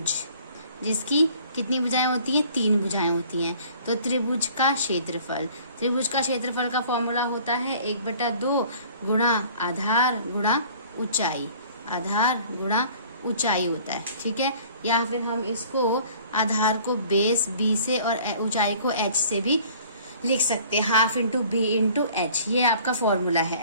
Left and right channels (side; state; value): both; inverted; correlation -0.52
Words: जिसकी कितनी भुजाएं होती हैं, 3 भुजाएं होती हैं। तो त्रिभुज का क्षेत्रफल, त्रिभुज का क्षेत्रफल का फॉर्मूला होता है 1/2 गुणा आधार गुणा ऊंचाई, आधार गुणा ऊंचाई होता है, ठीक है। या फिर हम इसको आधार को बेस B से और ऊंचाई को H से भी लिख सकते हैं, ½ × B × H, ये आपका फॉर्मूला है।